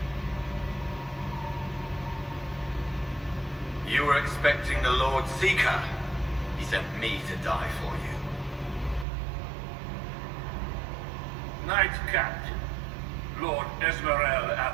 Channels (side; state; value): left; drops out; at 9.1 s